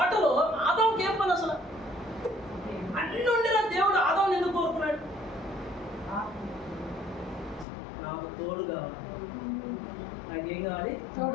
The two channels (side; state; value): right; drops out; at 7.7 s